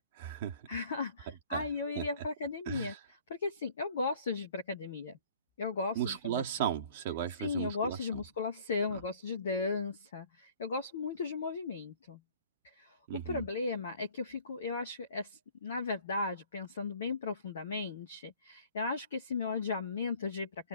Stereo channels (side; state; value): both; inverted; correlation -0.52